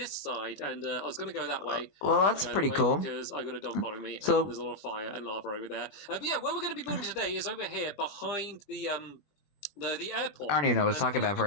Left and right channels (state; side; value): late; right; 21 ms